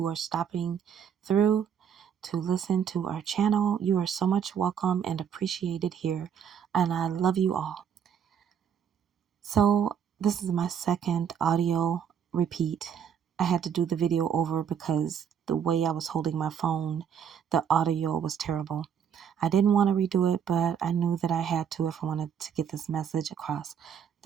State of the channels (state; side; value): quieter; left; 8.0 dB